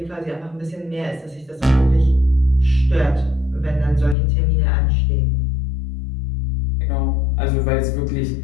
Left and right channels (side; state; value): right; drops out; at 4.2 s